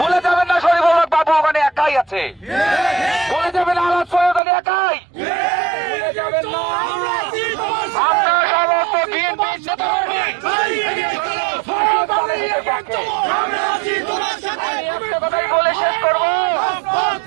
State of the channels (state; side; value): drops out; left; at 4.4 s